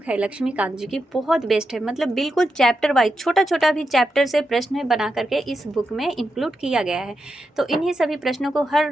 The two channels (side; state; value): both; normal; correlation 0.87